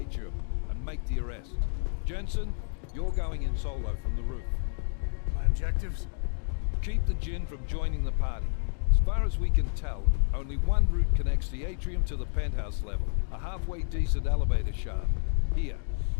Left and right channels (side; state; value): right; silent; digital silence